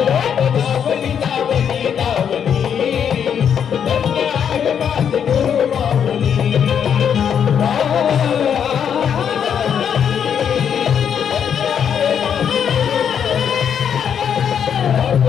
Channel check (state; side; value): quieter; right; 8.1 dB